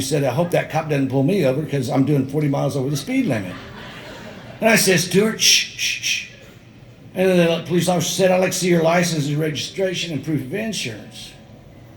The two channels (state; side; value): identical; both; correlation 1.00